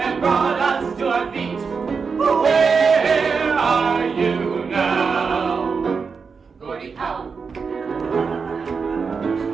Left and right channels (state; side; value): quieter; left; 5.3 dB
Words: brought us to our feet. Where are you now? Gordie Howe.